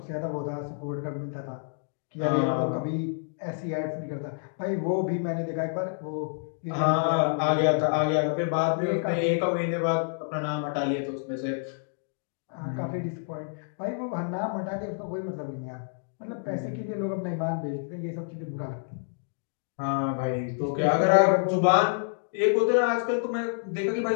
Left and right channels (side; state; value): right; silent; digital silence